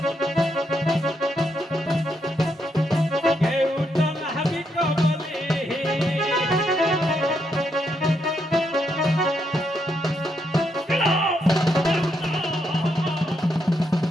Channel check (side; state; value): both; normal; correlation 0.79